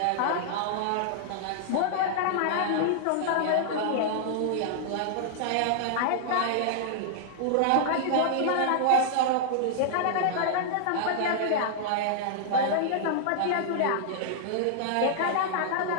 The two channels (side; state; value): both; different; correlation -0.01